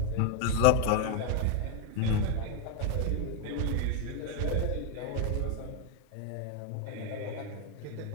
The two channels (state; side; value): different; both; correlation 0.00